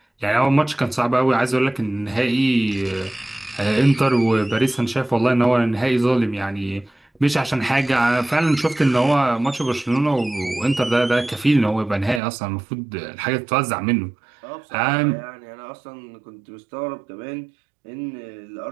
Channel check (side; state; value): left; drops out; at 12.2 s